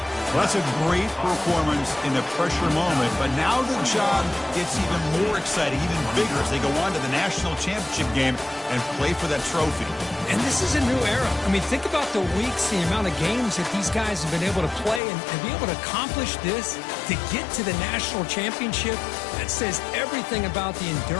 Well, that's a great performance in the pressure moment, but now the job gets even more exciting, even bigger as they go on to the national championship game and play for that trophy. And this is a new era. I mean, think about the weeks, the amount of games that these guys have been able to play and be able to accomplish this, to get to the national championship. That says everything about the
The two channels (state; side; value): drops out; right; at 15.0 s